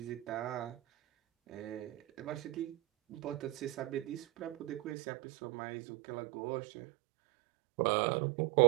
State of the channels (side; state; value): left; drops out; at 5.0 s